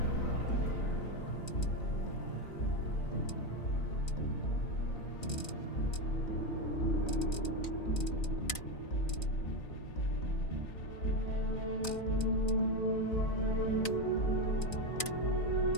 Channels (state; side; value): late; right; 3.9 ms